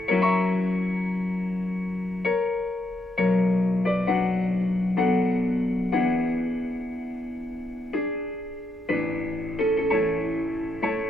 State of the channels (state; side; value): normal; both; correlation 0.80